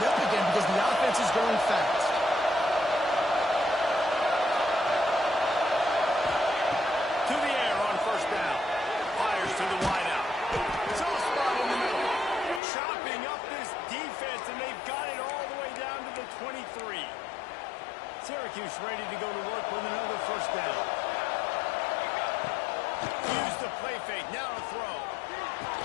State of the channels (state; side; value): drops out; right; at 12.6 s